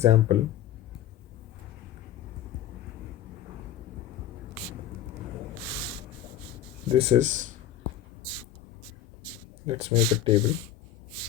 This is, let's make a table.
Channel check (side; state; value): right; quieter; 11.2 dB